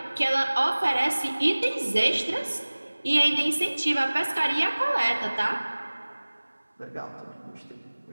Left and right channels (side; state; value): both; inverted; correlation -1.00